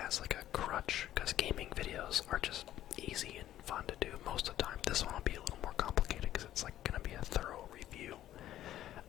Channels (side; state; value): right; quieter; 12.8 dB